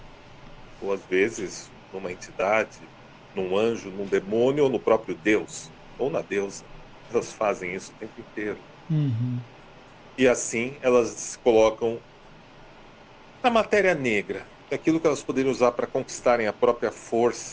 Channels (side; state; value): both; identical; correlation 1.00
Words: ou às vezes numa entidade, num anjo, num demônio ou no próprio Deus, ou na deusa. Elas fazem isso o tempo inteiro. Uhum. E assim elas se colocam na matéria negra, aquilo que elas poderiam usar para conquistarem a própria